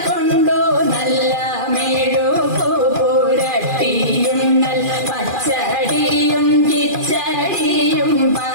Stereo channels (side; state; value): left; late; 2.4 ms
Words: കൊണ്ടു നല്ല മെഴുകു പുരട്ടിയും നല്ല പച്ചടിയും കിച്ചടിയും